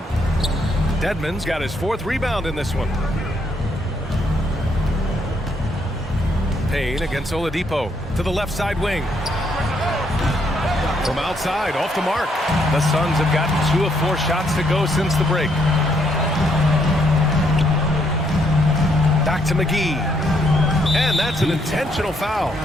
Dedmon's got his 4th rebound in this one. Payne against Oladipo to the left side wing. From outside, off the mark. The Suns have gotten 2 of 4 shots to go since the break. Back to McGee. And that's an intentional foul.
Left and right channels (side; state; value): both; normal; correlation 0.72